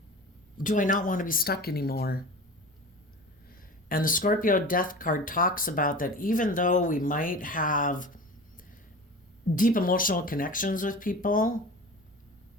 do I not want to be stuck anymore? And the Scorpio Death card talks about that even though we might have deep emotional connections with people,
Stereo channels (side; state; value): both; normal; correlation 0.35